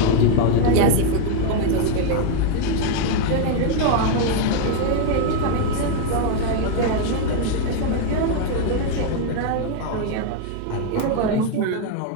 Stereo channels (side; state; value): both; different; correlation 0.01